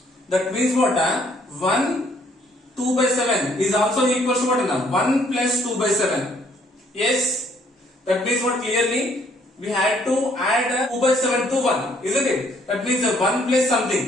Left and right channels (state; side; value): normal; both; correlation 0.65